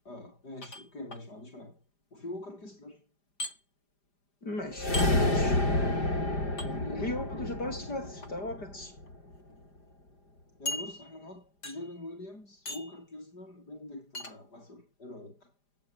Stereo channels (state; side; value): late; right; 5.0 ms